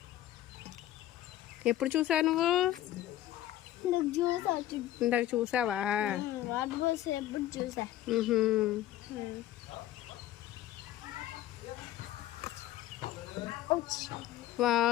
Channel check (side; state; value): right; quieter; 13.6 dB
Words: ఎప్పుడు చూసావు నువ్వు? ఇందాక చూసావా?